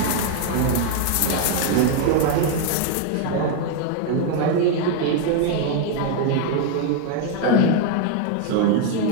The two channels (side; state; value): both; different; correlation 0.00